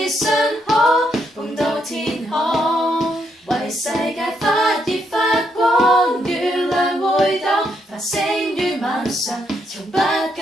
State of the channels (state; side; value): normal; both; correlation 0.77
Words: 信可碰到天空，為世界發熱發光，月亮會當繁星於晚上，從不